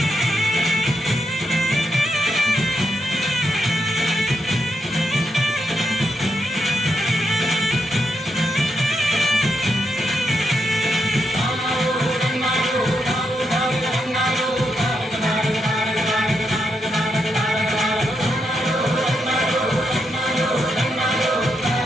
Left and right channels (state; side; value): normal; both; correlation 0.82